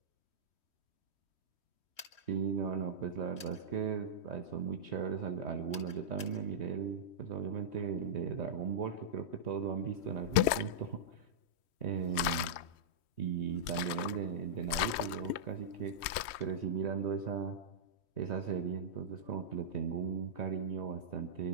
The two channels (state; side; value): late; right; 3.1 ms